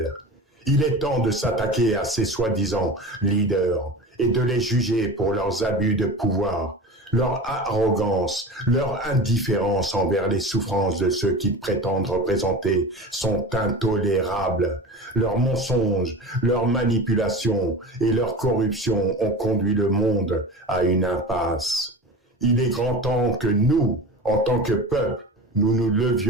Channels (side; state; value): both; normal; correlation 0.32